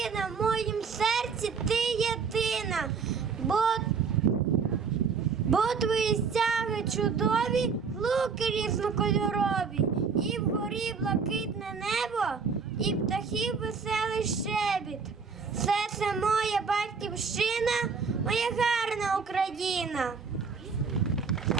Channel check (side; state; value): left; quieter; 5.5 dB